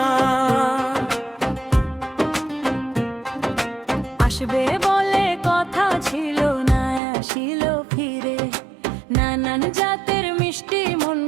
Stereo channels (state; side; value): drops out; left; at 7.0 s